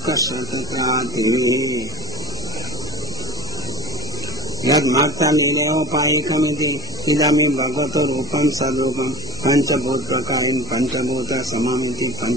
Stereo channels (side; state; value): both; normal; correlation 0.36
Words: तत्रातिः यद्मत्तलीलोपायिकमिति इदमिं भगवतो रूपं सद्रूपं पञ्चभूतप्रकारेण पञ्चभूतसममिति